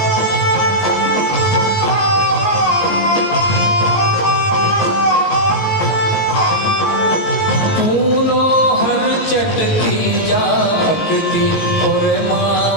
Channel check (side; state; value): right; late; 19 ms